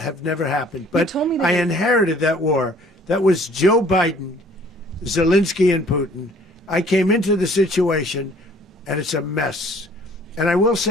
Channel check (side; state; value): both; normal; correlation 0.56